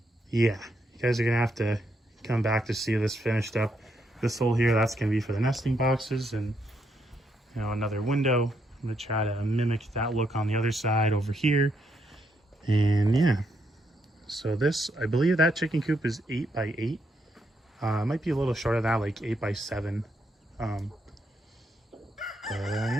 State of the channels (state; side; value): normal; both; correlation 0.77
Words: you guys are gonna have to come back to see this finished up. This hole here, that's gonna be for the nesting boxes, and you know, another window. I'm gonna try to mimic that look on the other side over here. And yeah, so this, I believe that chicken coop is 8 by 8. It might be a little shorter than that, like 8 by 7.